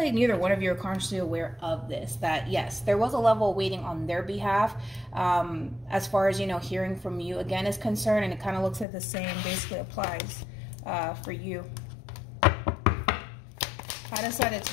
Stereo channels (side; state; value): right; drops out; at 8.8 s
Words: neither one of you are consciously aware of this, that yes, there was a level of waiting on their behalf as far as, you know, hearing from you again is concerned, and it kind of looks like the same basically applies for you. How does